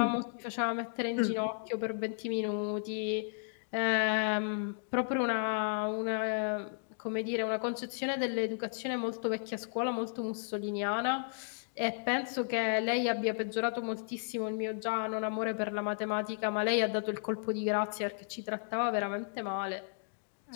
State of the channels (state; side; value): silent; right; digital silence